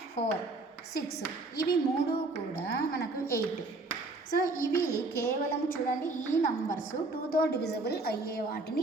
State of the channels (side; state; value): left; quieter; 3.2 dB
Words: 4, 6, ఇవి 3 కూడా మనకు 8. సో ఇవి కేవలం చూడండి, ఈ నంబర్స్ 2తో డివిజిబుల్ అయ్యే